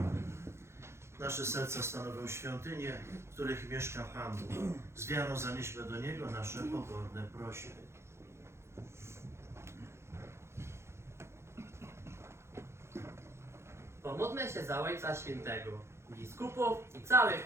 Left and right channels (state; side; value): late; left; 0.13 ms